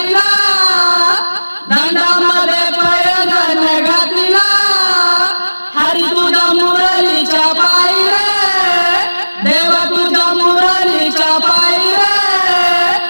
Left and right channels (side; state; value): both; inverted; correlation -1.00